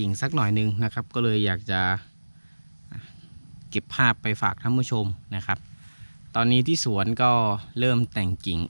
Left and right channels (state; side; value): inverted; both; correlation -1.00